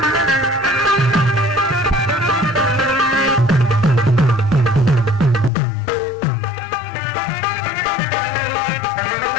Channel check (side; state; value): right; drops out; at 5.5 s